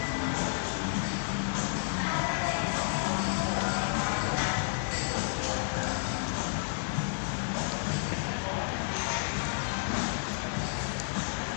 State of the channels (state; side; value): silent; right; digital silence